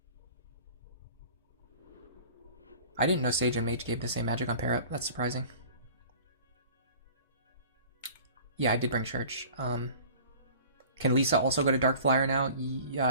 I didn't know Sage and Mage gave the same magic on pair up. That's surprising. Yeah, I did bring Church. Can Lisa also go to Dark Flyer now?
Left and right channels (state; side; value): inverted; both; correlation -0.45